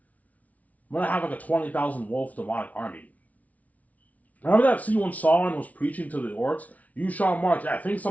I'm gonna have like a 20,000 wolf demonic army. Remember that scene when Sauron was preaching to the orcs? You shall march. Yeah, I think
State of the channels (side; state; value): right; late; 0.071 ms